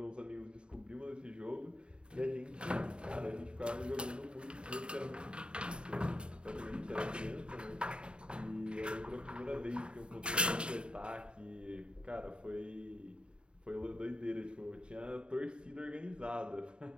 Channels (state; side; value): late; left; 0.053 ms